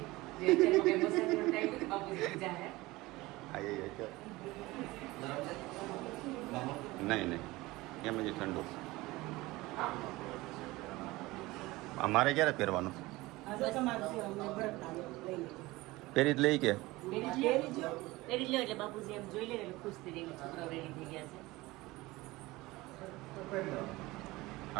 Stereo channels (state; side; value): quieter; left; 20.3 dB